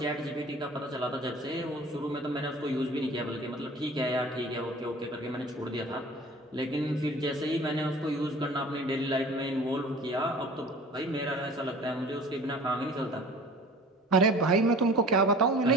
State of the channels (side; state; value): both; normal; correlation 0.44